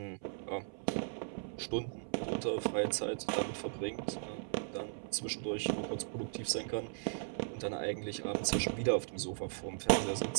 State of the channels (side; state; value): left; silent; 53 dB below the other